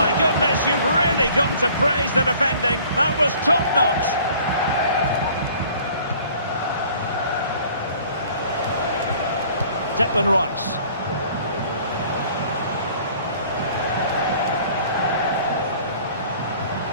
goodness, you've really got to praise the defending. That was top-notch. Declan Rice.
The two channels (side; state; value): both; inverted; correlation -0.52